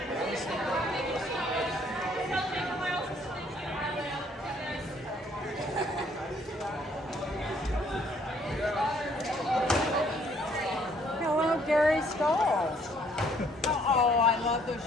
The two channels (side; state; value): both; normal; correlation 0.64